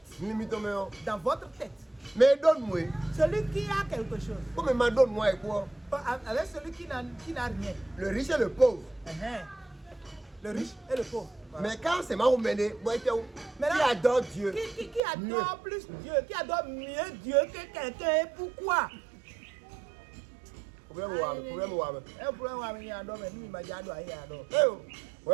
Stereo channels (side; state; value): left; drops out; at 15.0 s